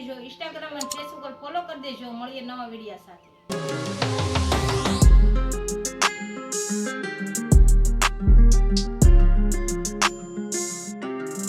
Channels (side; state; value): both; identical; correlation 1.00